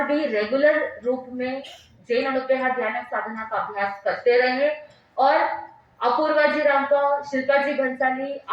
भी रेगुलर रूप में जैन अनुदेहा ध्यान साधना का अभ्यास करते रहे और अपूर्वा जी रांका, शिल्पा जी भंसाली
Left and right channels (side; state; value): both; identical; correlation 1.00